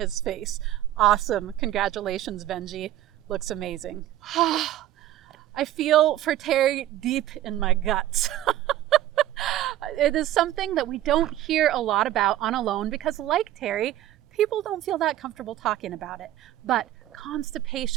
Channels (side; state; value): left; quieter; 13.4 dB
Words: face. Awesome. Congratulations, Benji. Looks amazing. I feel for Terry deep in my guts. It is something that we don't hear a lot about on Alone because, like Terry, people don't feel that comfortable talking about it. But